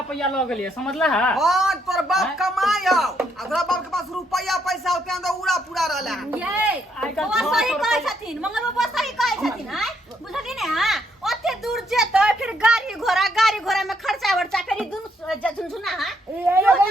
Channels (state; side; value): normal; both; correlation 0.74